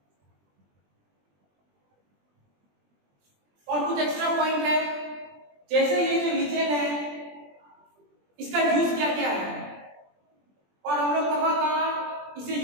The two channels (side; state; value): left; late; 20 ms